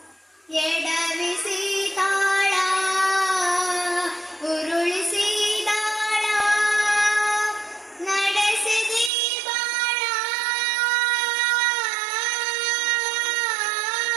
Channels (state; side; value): drops out; left; at 9.1 s